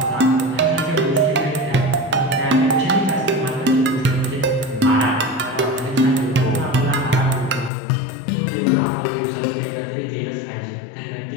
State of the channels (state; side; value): drops out; right; at 7.7 s